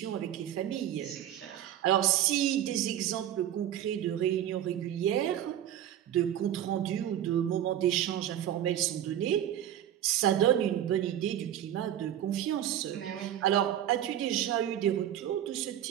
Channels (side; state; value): left; quieter; 11.2 dB